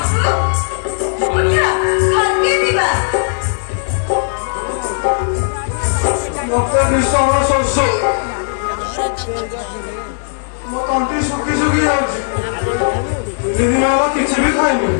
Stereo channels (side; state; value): right; silent; 69 dB below the other